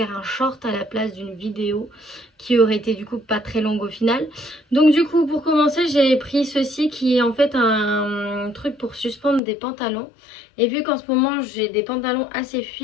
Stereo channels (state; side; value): drops out; right; at 9.4 s